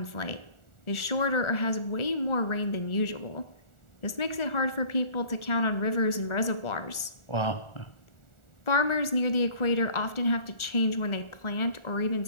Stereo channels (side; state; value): right; late; 1.4 ms